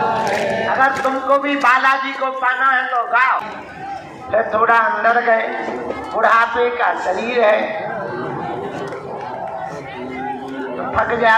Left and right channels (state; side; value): identical; both; correlation 1.00